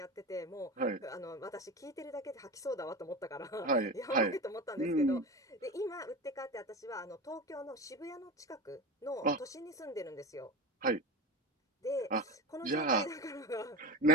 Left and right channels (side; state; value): both; normal; correlation 0.26